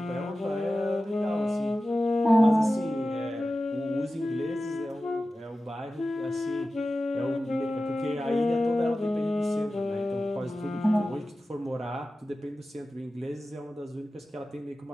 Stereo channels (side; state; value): both; normal; correlation 0.94